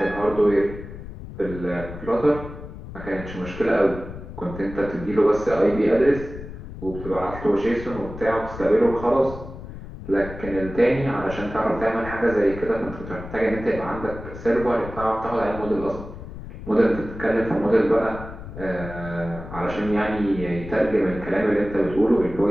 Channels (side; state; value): left; noise; rumble, 12 dB below the sound